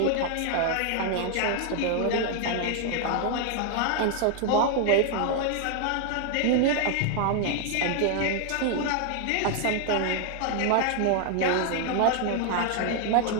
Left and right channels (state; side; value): different; both; correlation 0.00